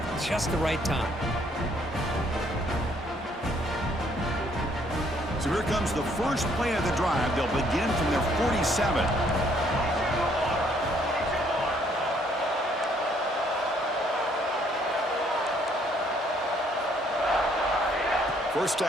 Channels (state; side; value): normal; both; correlation 0.66